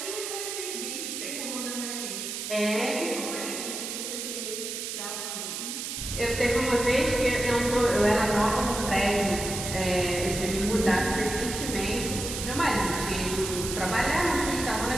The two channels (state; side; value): noise; right; hiss, 5 dB below the sound